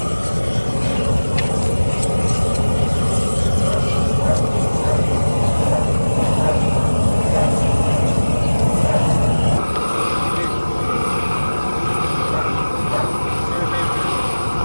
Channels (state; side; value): inverted; both; correlation -1.00